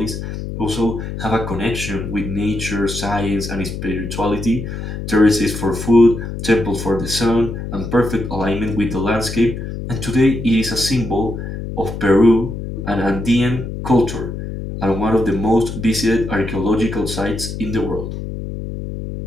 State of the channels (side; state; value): left; noise; hum, 7 dB below the sound